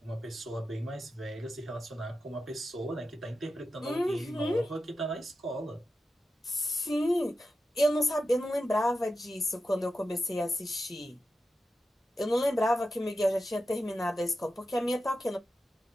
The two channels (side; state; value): both; normal; correlation 0.91